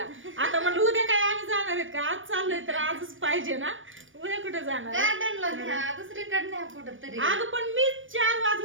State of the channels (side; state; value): left; late; 0.57 ms